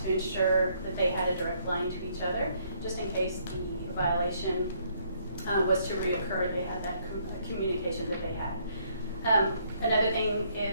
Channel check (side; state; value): both; inverted; correlation -0.68